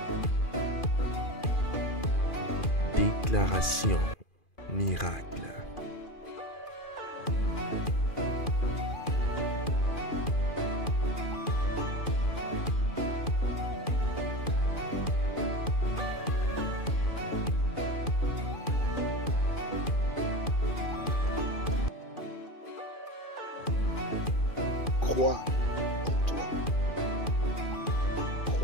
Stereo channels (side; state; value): right; late; 2.4 ms